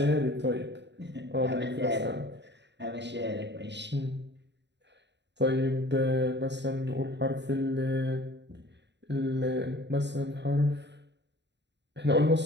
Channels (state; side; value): late; left; 0.51 ms